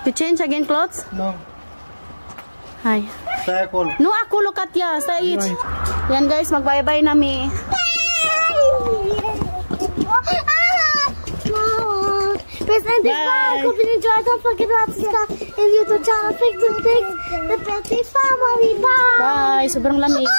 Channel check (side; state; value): both; inverted; correlation -1.00